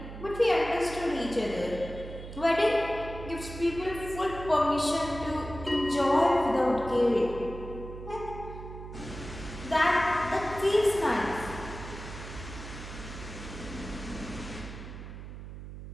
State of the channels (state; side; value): noise; right; hum, 11 dB below the sound